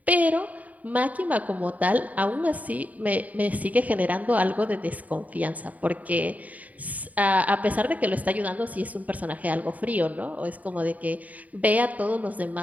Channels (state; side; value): late; left; 0.073 ms